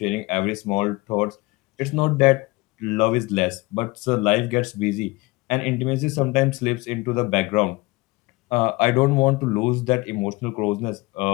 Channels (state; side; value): quieter; right; 23.0 dB